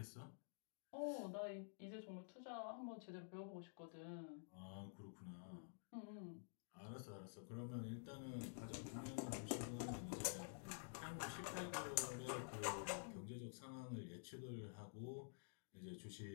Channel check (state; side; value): silent; right; digital silence